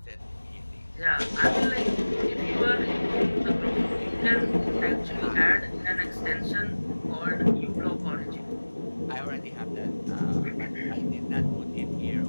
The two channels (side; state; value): both; inverted; correlation -1.00